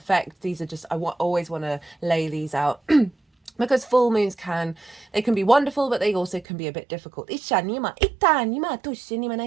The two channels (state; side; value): drops out; left; at 6.5 s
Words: These are just, always want to lay these out because full moons can be wonderful, but they also can be a bit difficult. Right,